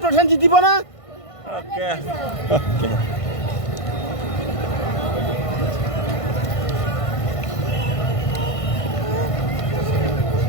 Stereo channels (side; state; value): right; late; 1.5 ms